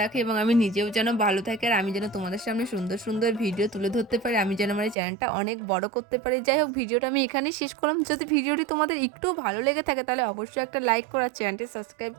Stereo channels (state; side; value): drops out; left; at 5.0 s